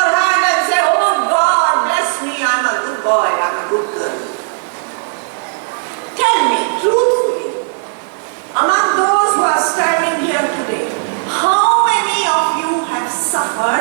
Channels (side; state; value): left; silent; digital silence